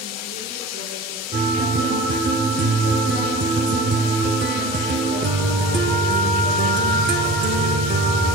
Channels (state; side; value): normal; both; correlation 0.37